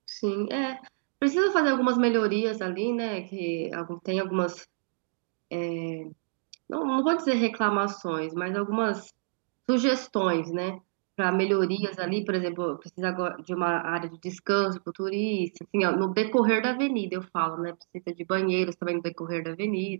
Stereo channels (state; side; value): silent; left; digital silence